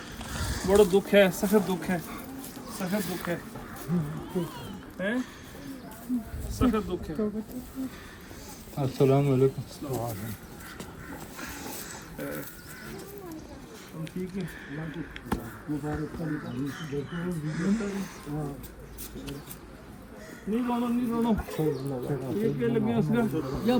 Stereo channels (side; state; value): both; identical; correlation 1.00